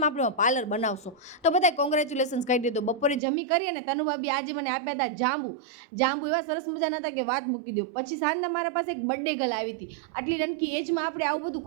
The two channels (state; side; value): drops out; left; at 3.2 s